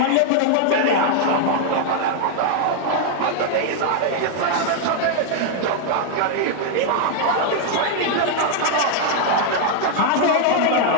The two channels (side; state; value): both; different; correlation 0.00